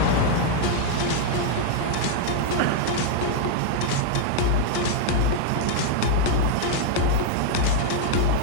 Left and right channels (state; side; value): different; both; correlation 0.00